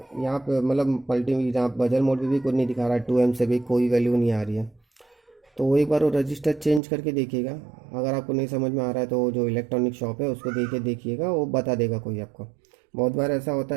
यहाँ पे मतलब यहाँ बजर मोड पे भी कुछ नहीं दिखा रहा है, 2 एम से भी कोई वैल्यू नहीं आ रही है, तो एक बार वो रजिस्टर चेंज करके देखिएगा। अगर आपको नहीं समझ में आ रहा है तो जो इलेक्ट्रॉनिक शॉप है उसको देखिएगा, वो बता देगा कोई आपको। बहुत बार ऐसा होता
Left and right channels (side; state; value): left; drops out; at 6.8 s